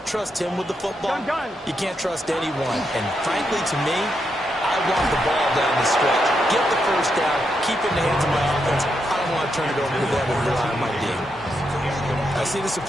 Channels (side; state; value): both; normal; correlation 0.82